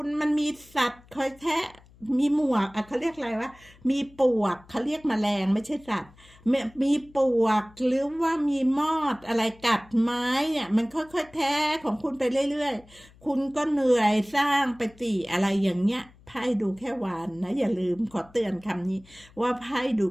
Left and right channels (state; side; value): noise; left; hum, 26 dB below the sound